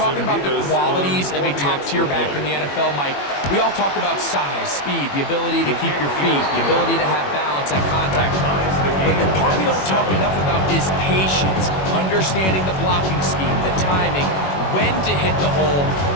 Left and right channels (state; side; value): late; right; 21 ms